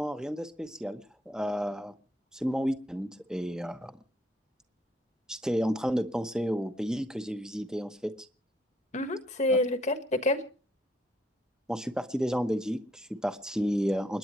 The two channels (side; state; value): both; normal; correlation 0.71